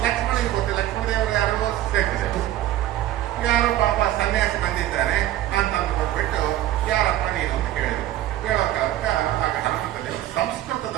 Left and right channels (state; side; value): quieter; left; 13.6 dB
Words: ಲಕ್ಷ್ಮಣಿಗೆ ಗೊತ್ತಿಲ್ಲ. ಲಕ್ಷ್ಮಣ ದೇವರು ಯಾರೋ ಸೇರಿದೆ, ಯಾರೋ ಪಾಪ ಸನ್ಯಾಸಿ ಬಂದಿದ್ದಾನೆ ಅಂತ ಅಂದ್ಕೊಂಡ್ಬಿಟ್ಟು ಯಾರಪ್ಪ ನೀನು ಅಂತ ಕೇಳಿದ್ರು. ಕೇಳೋ ಕಾಲಕ್ಕೆ ಆಗ ಹನುಮಂತ ದೇವರು